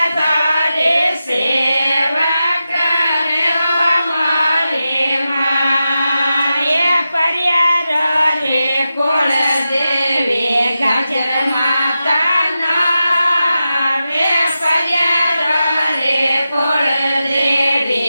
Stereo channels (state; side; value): inverted; both; correlation -0.91